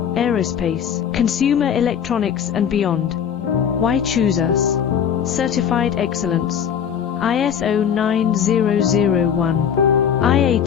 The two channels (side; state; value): right; quieter; 8.2 dB